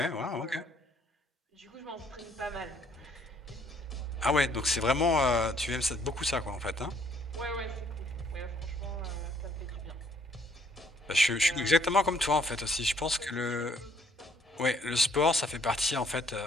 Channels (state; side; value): normal; both; correlation 0.64